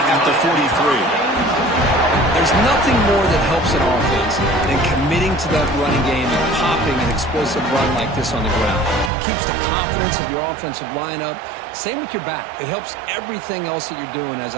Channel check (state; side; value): drops out; left; at 9.1 s